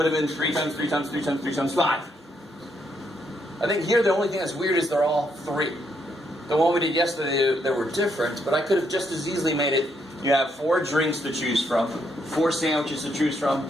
have been 3 times 3 times 3 times 3 times 5. I think here the only thing that's weird is they're all 3. The one we did yesterday, they were different, but I could have just as easily made it, you have 4 drinks to choose from, 4 sandwiches to choose from,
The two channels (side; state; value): both; normal; correlation 0.75